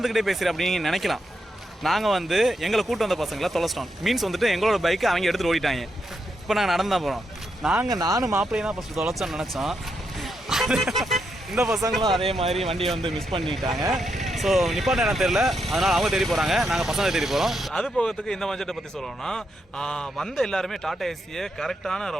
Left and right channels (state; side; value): normal; both; correlation 0.82